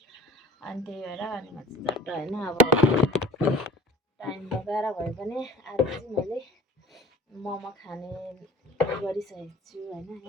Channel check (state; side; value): normal; both; correlation 0.43